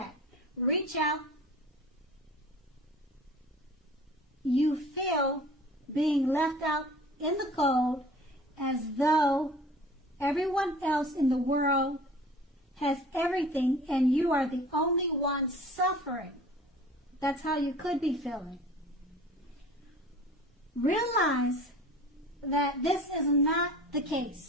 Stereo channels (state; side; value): normal; both; correlation 0.44